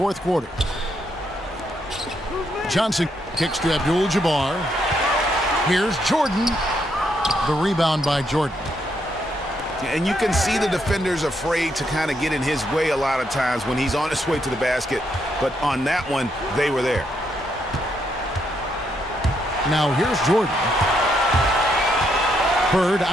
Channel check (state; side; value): normal; both; correlation 0.76